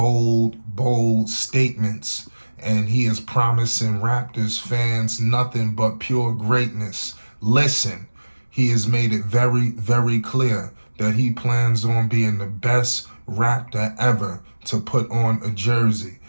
statements, and he is promising Raptors fans nothing but pure greatness. Listen, he has made it very clear that he plans on being the best Raptor ever to put on a jersey.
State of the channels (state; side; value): inverted; both; correlation -1.00